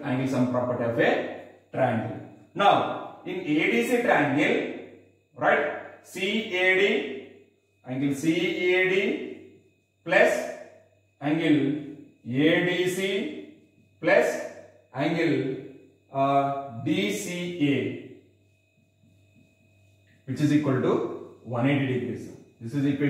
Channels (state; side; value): identical; both; correlation 1.00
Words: angle sum property of a triangle. Now, in ADC triangle, right? Angle CAD plus angle ADC plus angle DCA, which is equal to 180 degrees. This is